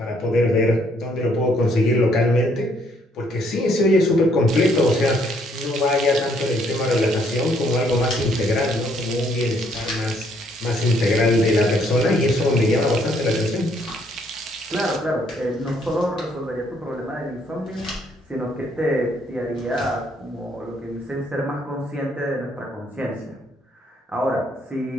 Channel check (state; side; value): normal; both; correlation 0.68